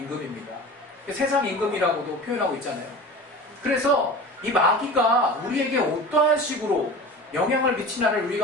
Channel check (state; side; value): normal; both; correlation 0.35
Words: 세상 임금이라고도 표현하고 있잖아요. 그래서 이 마귀가 우리에게 어떠한 식으로 영향을 미치나를